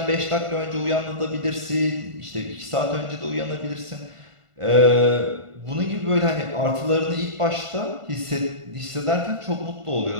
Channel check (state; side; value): late; left; 1.5 ms